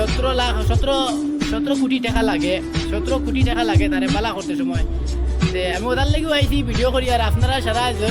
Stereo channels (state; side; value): identical; both; correlation 1.00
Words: 17 কোটি টাকা লাগে। 17 কোটি টাকা লাগে তারে বালা করতে সময়। তে আমি ওদার লাগেও আইছি ভিডিও করি। আর আপনারা সারা